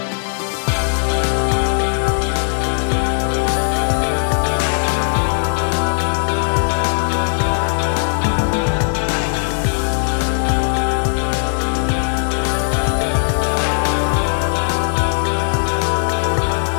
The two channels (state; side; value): silent; right; digital silence